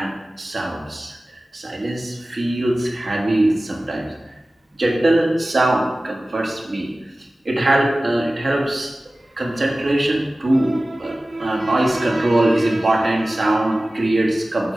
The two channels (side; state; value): both; normal; correlation 0.97